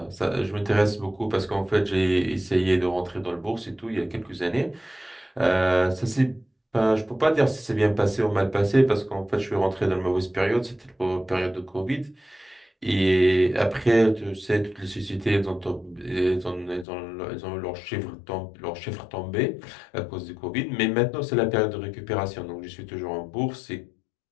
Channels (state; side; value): drops out; right; at 16.9 s